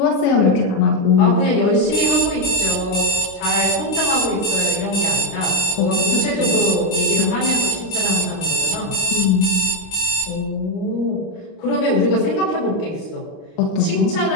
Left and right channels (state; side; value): late; right; 29 ms